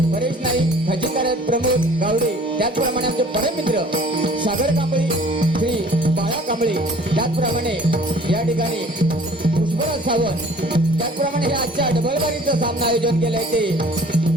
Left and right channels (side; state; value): both; normal; correlation 0.51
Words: परेश नाईक, खजिनदार आहेत प्रमोद गावडे, त्याचप्रमाणे आमचे परममित्र सागर कांबळी, श्री बाळा कांबळी, त्याचप्रमाणे या ठिकाणी पुष्पराज सावंत, त्याचप्रमाणे हे आजच्या डबलबारीचं सामना आयोजन केलंय ते